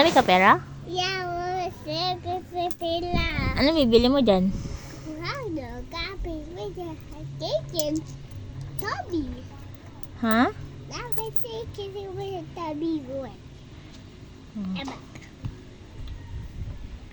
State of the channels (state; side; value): identical; both; correlation 1.00